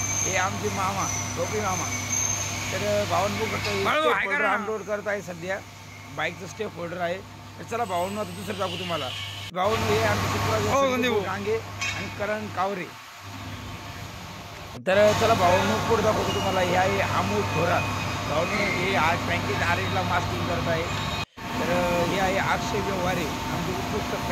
हे आमचे मामा टोपी मामा. तर भावनो बघू शकतो अनलोड करत आहे सध्या. बाईकचं स्टेप होल्डर आहे. तर चला भावनो आता दुसरं दाखवू तुम्हाला. भावनो हे आमचे चित्र डांगे आणि करण कावरे. तर चला भावनो पुढे दाखवतो तुम्हाला. हे आहे अमोल थोरात. भावनो हे आज बँकेत आरेला मास्किंग करत आहे. तर हे आहे अक्षय व्यवहारे आमचे उत्कृष्ट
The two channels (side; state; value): both; identical; correlation 1.00